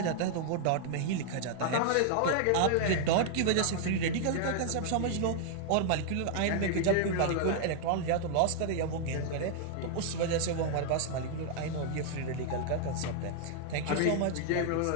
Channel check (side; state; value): both; different; correlation 0.00